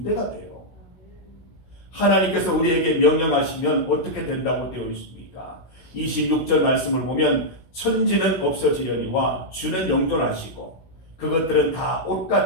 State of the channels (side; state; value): right; late; 16 ms